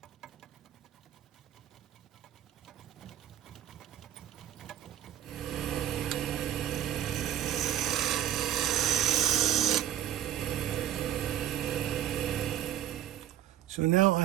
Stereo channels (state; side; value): quieter; left; 11.3 dB